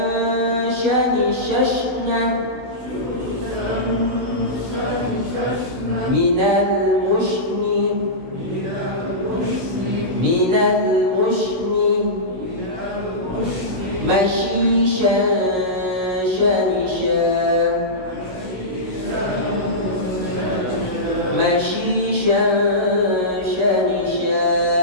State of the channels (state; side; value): late; left; 16 ms